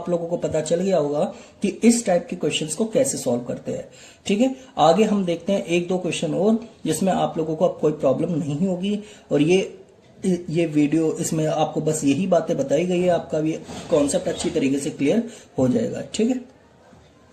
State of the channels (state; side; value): identical; both; correlation 1.00